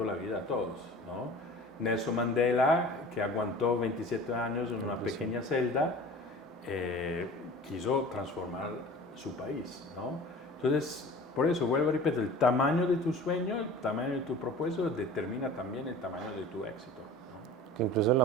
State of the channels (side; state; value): both; normal; correlation 0.41